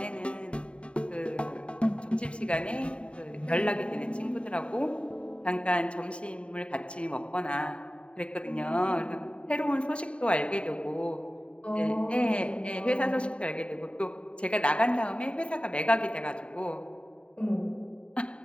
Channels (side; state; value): right; late; 0.059 ms